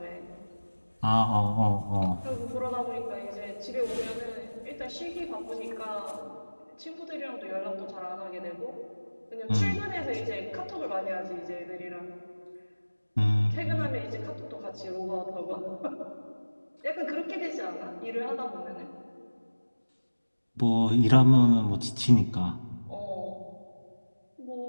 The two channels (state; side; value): inverted; both; correlation -1.00